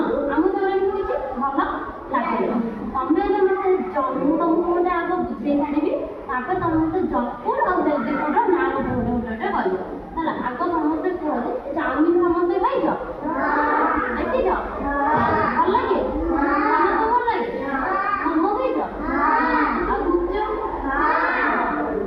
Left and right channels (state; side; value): identical; both; correlation 1.00